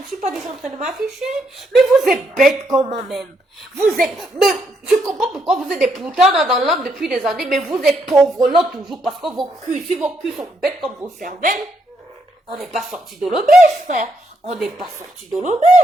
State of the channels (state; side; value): normal; both; correlation 0.76